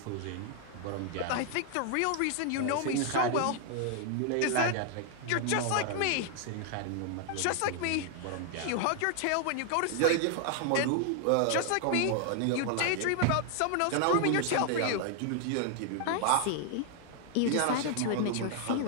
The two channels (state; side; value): different; both; correlation 0.00